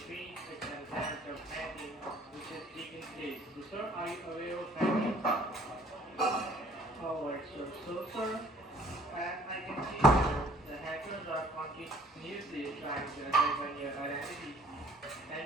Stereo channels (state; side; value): normal; both; correlation 0.56